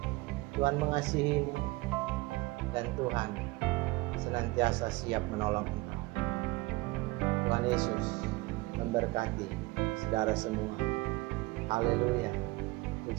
Tuhan mengasihimu. Dan Tuhan senantiasa siap menolong engkau. Tuhan Yesus memberkati saudara semua. Haleluya.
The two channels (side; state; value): left; quieter; 22.0 dB